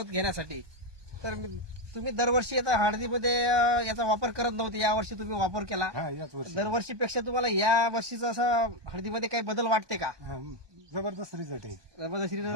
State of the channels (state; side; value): late; left; 1.2 ms